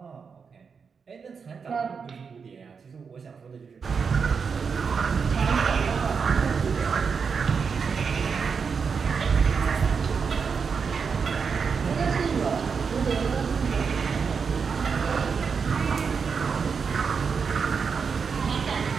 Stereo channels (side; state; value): left; quieter; 5.8 dB